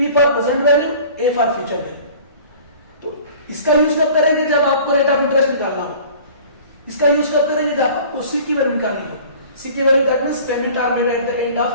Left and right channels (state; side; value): inverted; both; correlation -0.46